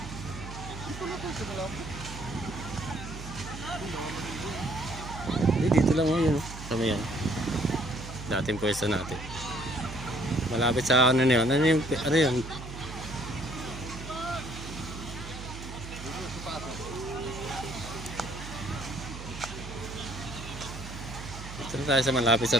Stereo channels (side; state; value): right; noise; hum, 11 dB below the sound